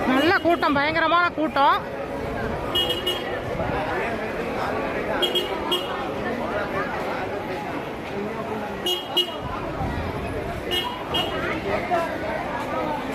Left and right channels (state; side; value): identical; both; correlation 1.00